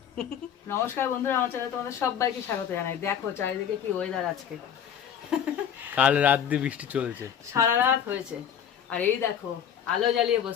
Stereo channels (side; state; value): right; quieter; 8.7 dB